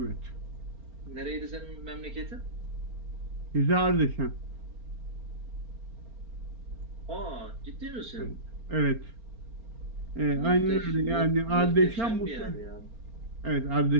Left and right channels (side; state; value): left; late; 4.4 ms